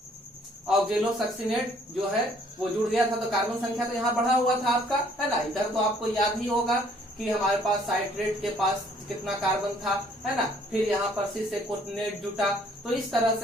ऑक्जेलोसक्सिनेट जो है वो जुड़ गया था, तो कार्बन संख्या तो यहाँ बढ़ा हुआ था आपका, है ना। इधर तो आपको याद ही होगा कि हमारे पास साइट्रेट के पास कितना कार्बन था, है ना, फिर यहाँ पर सिस एकोनिटेट जुटा। तो इस तरह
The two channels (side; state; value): both; normal; correlation 0.61